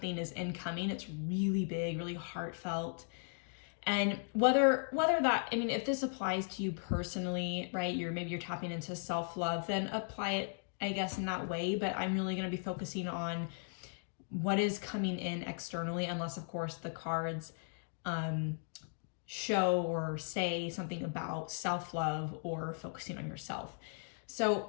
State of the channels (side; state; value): right; silent; digital silence